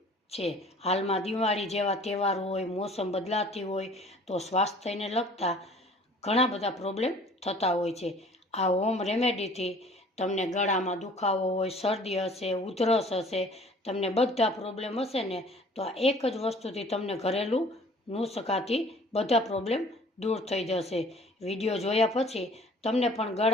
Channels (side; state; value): both; normal; correlation 0.51